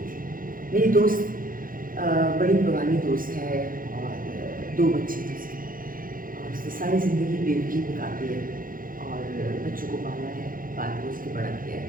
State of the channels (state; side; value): late; left; 0.41 ms